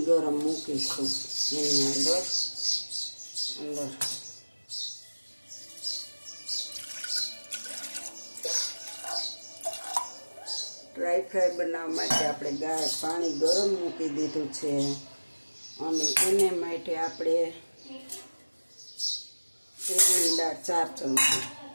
ગરમ મૂકીશું એની અંદર ડ્રાય ફ્રાય બનાવવા માટે આપણે પાણી ગરમ મૂકી દીધું છે અને એને માટે આપણે તેલની દાળ 4 ચમચી,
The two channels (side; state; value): both; inverted; correlation -1.00